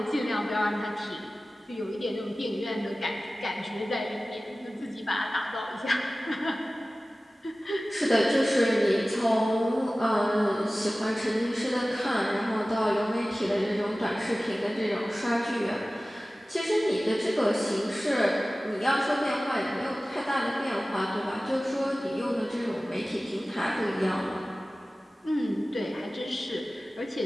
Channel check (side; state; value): both; normal; correlation 0.97